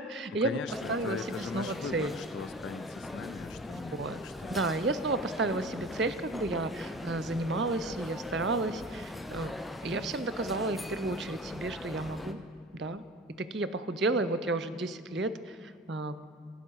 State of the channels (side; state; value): both; normal; correlation 0.37